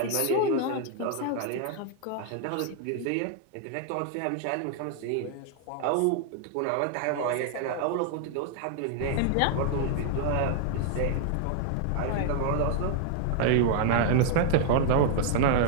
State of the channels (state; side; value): different; both; correlation -0.01